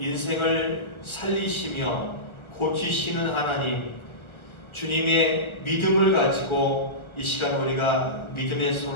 살리시며 고치시는 하나님, 주님의 믿음을 가지고 이 시간 우리가 믿음의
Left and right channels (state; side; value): late; right; 1.3 ms